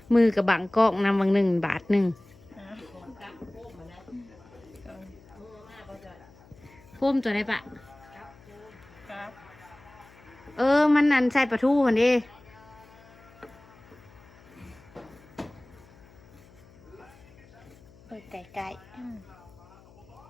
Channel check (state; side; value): noise; left; hum, 24 dB below the sound